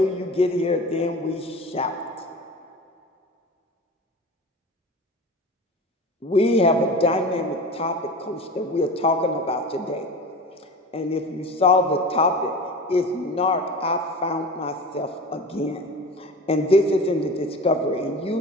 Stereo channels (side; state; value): both; normal; correlation 0.34